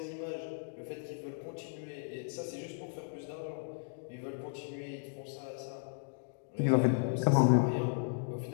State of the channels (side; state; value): right; silent; digital silence